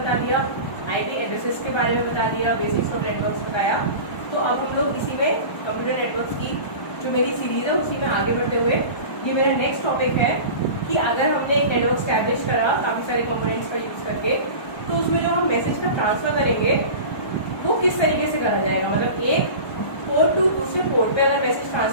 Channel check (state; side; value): late; right; 1.3 ms